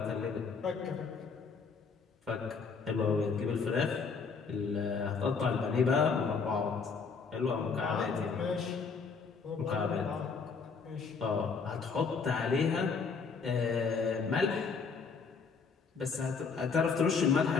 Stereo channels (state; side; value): quieter; right; 5.2 dB